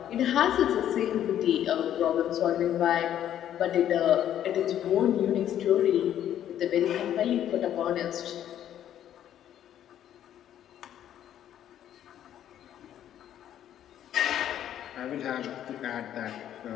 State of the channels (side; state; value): right; quieter; 10.8 dB